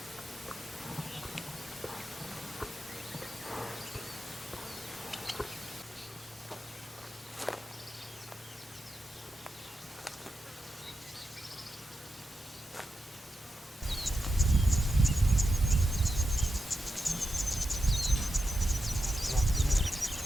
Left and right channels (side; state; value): both; normal; correlation 0.88